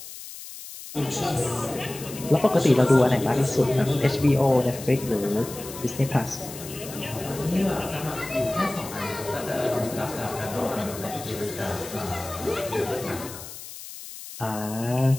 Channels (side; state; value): left; noise; hiss, 13 dB below the sound